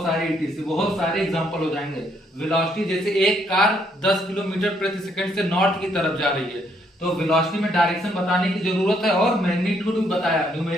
सारे ETC, बहुत सारे एग्जांपल हो जाएंगे। वेलोसिटी जैसे एक कार 10 किलोमीटर प्रति सेकंड से नॉर्थ की तरफ जा रही है, तो वेलोसिटी में डायरेक्शन बताने की जरूरत है, और मैग्नीट्यूड भी बताया,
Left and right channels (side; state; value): both; normal; correlation 0.71